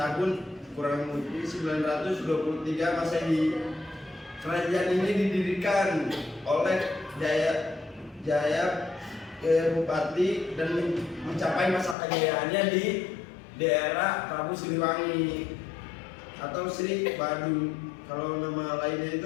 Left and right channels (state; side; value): drops out; right; at 12.0 s